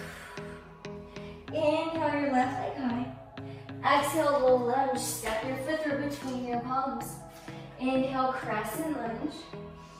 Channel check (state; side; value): identical; both; correlation 1.00